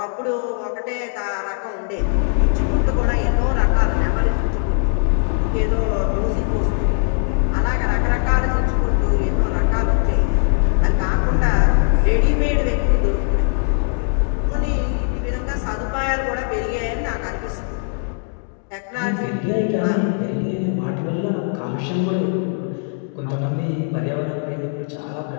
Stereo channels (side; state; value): right; silent; 57 dB below the other